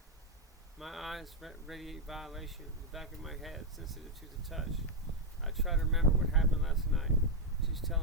My eyes radiate violation, the back of my head sensitive to the touch. I try to remember what happened last night. She's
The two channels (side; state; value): both; normal; correlation 0.02